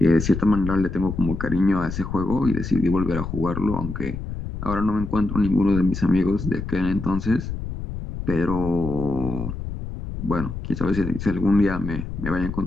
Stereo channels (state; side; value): noise; left; rumble, 7 dB below the sound